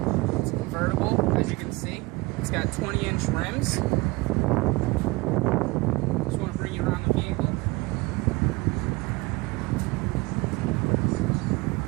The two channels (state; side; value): quieter; left; 23.7 dB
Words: It's convertible, as you can see. It's got 20-inch rims. Just want to bring you around the vehicle.